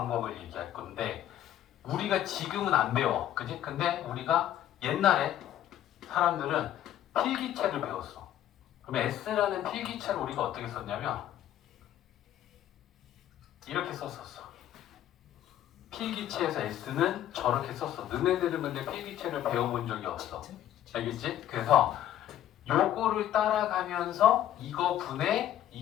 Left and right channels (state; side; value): quieter; right; 11.8 dB